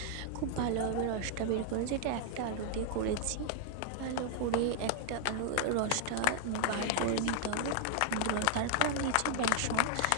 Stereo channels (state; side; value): different; both; correlation 0.00